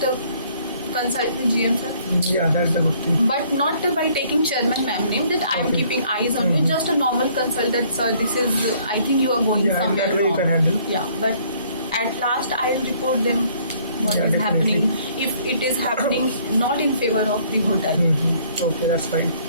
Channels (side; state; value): both; inverted; correlation -0.61